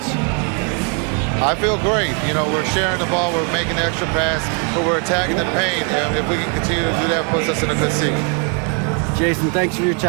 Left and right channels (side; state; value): left; quieter; 37.7 dB